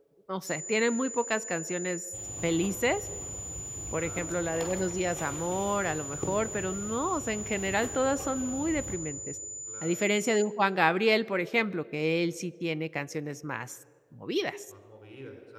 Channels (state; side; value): identical; both; correlation 1.00